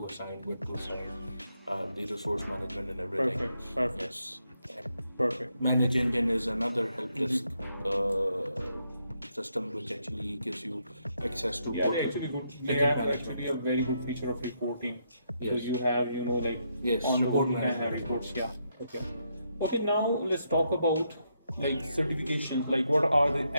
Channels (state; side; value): inverted; both; correlation -0.78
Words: assign, what to assign, the resource management and everything. Perfect. Yes. Perfect. Manage Engine is another help desk system which actually gives you access to Yeah, they portal actually good. They ticket have management. actually a very good feature of reporting. So Yes. you have, like Yes, on the go report you can have management. reports. Yeah. Okay. Okay. Now let's talk about like certifications. Like what are the